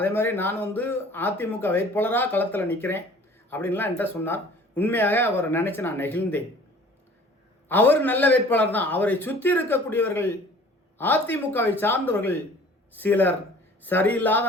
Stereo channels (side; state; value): both; normal; correlation 0.49